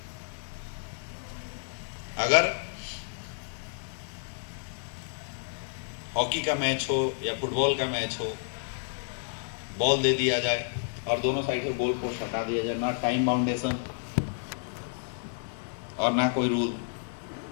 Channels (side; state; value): right; silent; digital silence